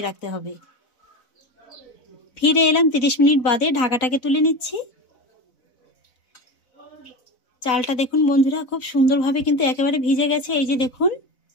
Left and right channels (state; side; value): late; right; 4.0 ms